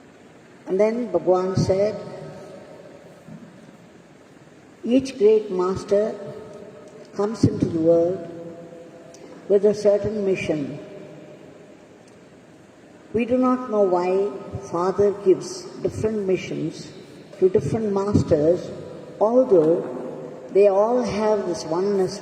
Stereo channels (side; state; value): both; identical; correlation 1.00